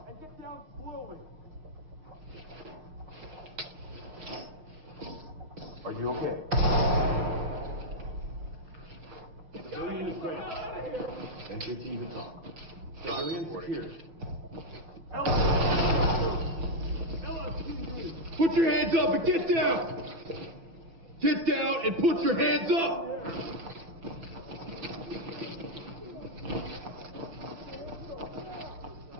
And get down slowly. Are you okay? Civilian is ready. Enter team to talk. Civilian secured. Put your hands up and get down! Get down and put your hands up!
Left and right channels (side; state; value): left; late; 6.1 ms